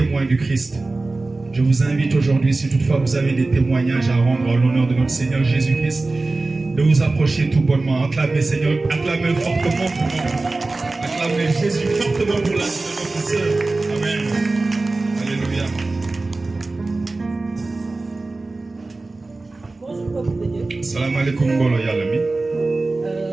du Christ, je vous invite aujourd'hui, si toutefois vous avez des témoignages à rendre en l'honneur de notre Seigneur Jésus-Christ, de vous approcher tout bonnement. Acclamez Seigneur, acclamez fortement pour nous. Acclamez Jésus fortement pour la vie de notre sœur. Amen. Alléluia. Bonjour peuple de Dieu. Salam alaikum bolo yalami.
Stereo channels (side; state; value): left; quieter; 3.3 dB